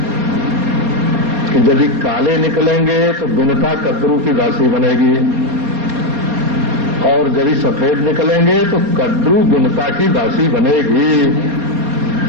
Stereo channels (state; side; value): late; left; 4.2 ms